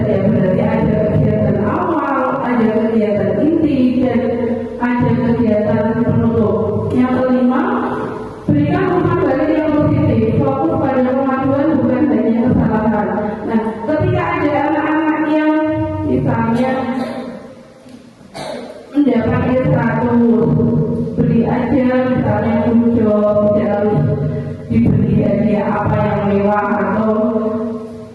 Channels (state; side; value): identical; both; correlation 1.00